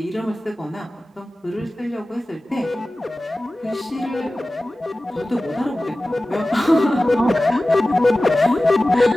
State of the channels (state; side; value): normal; both; correlation 0.96